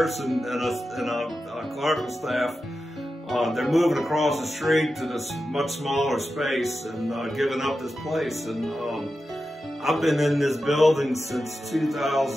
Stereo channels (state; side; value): normal; both; correlation 0.91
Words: and a clerical staff, they're moving across the street to this much smaller space and giving up this place. And I've been in this building since